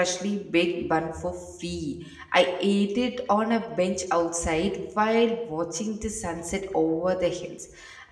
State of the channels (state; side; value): identical; both; correlation 1.00